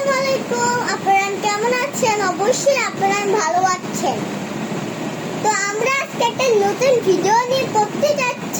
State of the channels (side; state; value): both; identical; correlation 1.00